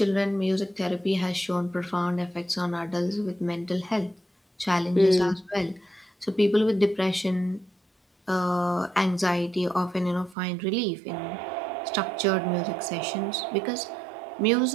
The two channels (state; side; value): drops out; left; at 10.4 s